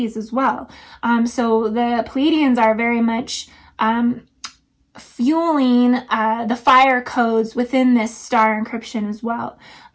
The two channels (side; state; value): both; identical; correlation 1.00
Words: as well. So the Pleiadians are very much fueling the fire codes within this star encryption as well.